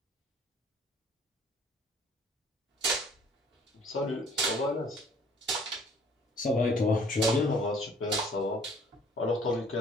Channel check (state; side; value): normal; both; correlation 0.56